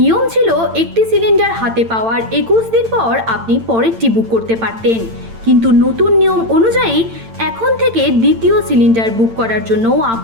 ছিল একটি সিলিন্ডার হাতে পাওয়ার 21 দিন পর আপনি পরেরটি বুক করতে পারতেন, কিন্তু নতুন নিয়ম অনুযায়ী এখন থেকে দ্বিতীয় সিলিন্ডার বুক করার জন্য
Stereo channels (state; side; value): late; left; 8.9 ms